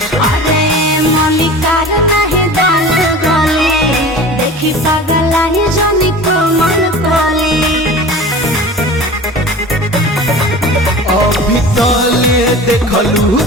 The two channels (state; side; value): normal; both; correlation 0.37